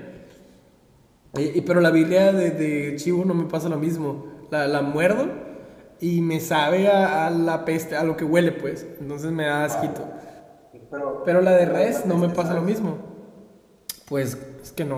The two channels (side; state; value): both; identical; correlation 1.00